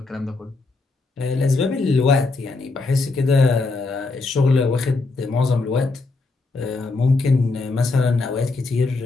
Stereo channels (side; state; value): right; quieter; 3.7 dB